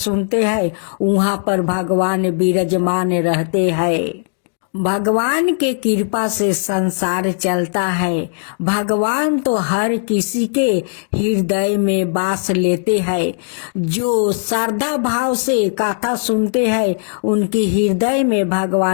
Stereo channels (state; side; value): silent; right; digital silence